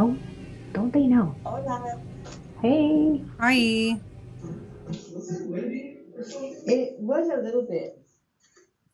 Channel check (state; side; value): identical; both; correlation 1.00